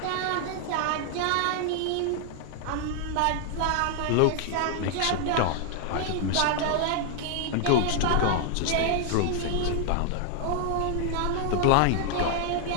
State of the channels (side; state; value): both; different; correlation 0.00